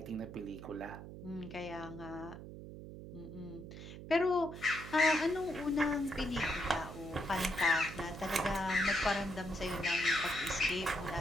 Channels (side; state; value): right; noise; hum, 12 dB below the sound